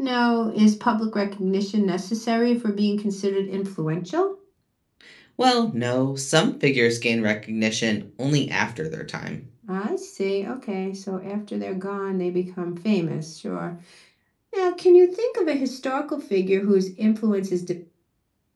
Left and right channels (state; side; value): identical; both; correlation 1.00